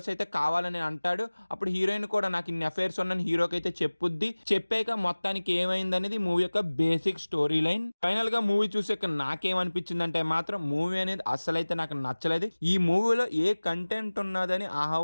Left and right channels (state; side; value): inverted; both; correlation -1.00